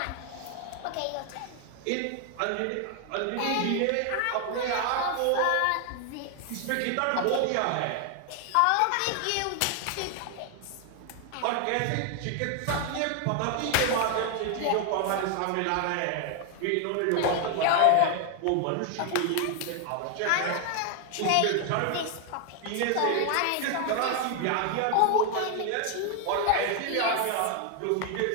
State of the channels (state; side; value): different; both; correlation 0.00